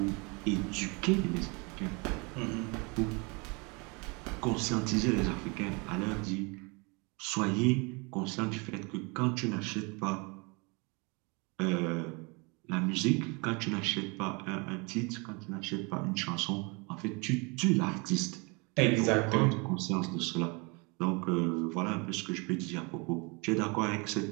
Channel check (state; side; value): quieter; left; 29.7 dB